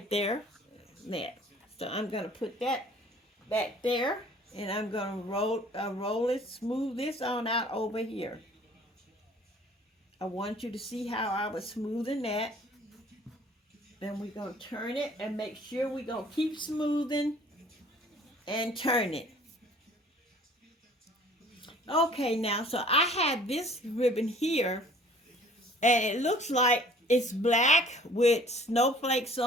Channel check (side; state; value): both; normal; correlation 0.52